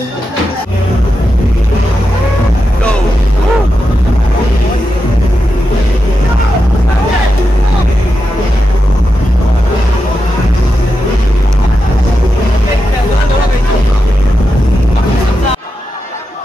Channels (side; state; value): both; normal; correlation 0.88